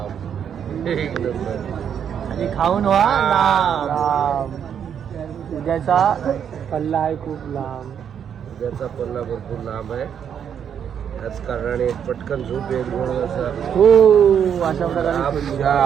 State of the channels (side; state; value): left; quieter; 8.3 dB